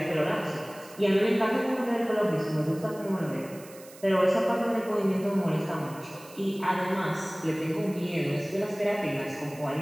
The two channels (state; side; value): noise; right; hiss, 20 dB below the sound